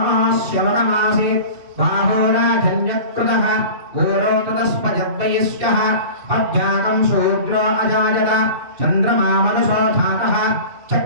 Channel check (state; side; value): late; left; 2.6 ms